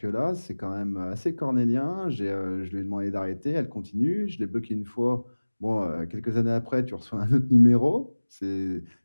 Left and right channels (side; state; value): both; inverted; correlation -1.00